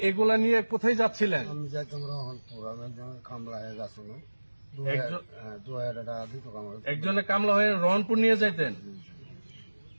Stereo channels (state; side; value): inverted; both; correlation -1.00